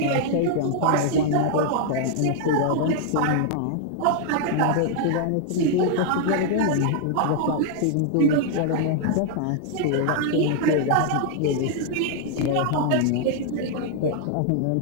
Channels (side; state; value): both; different; correlation 0.00